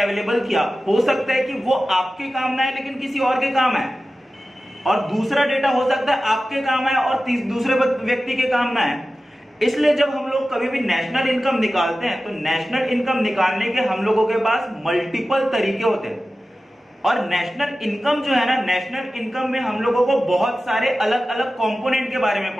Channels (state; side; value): normal; both; correlation 0.95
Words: किया, हो सकता है कि वो आपके काम ना आए लेकिन किसी और के काम आए, और दूसरा डेटा हो सकता है आपके काम आए और दूसरे व्यक्ति के काम ना आए। इसलिए जब हम लोग कभी भी नेशनल इनकम निकालते हैं, तो नेशनल इनकम निकालने के हम लोगों के पास मल्टीपल तरीके होते हैं। और नेशनल इनकम जो है ना, नेशनल इनकम में हम लोगों को बहुत सारे अलग अलग कंपोनेंट के बारे में